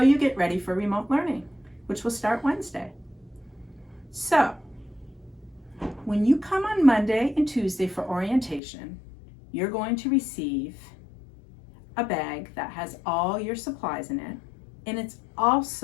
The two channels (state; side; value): drops out; right; at 8.6 s